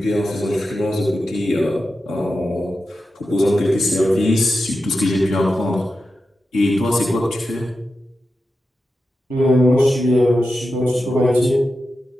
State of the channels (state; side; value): normal; both; correlation 0.90